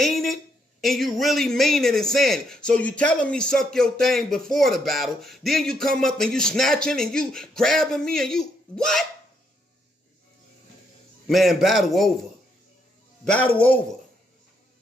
it, and you really mean it and saying it. So you telling me suck your thing before the battle, then you come up and you snatching and you grabbing me and you, what? Man, battle over.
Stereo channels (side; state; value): both; normal; correlation 0.75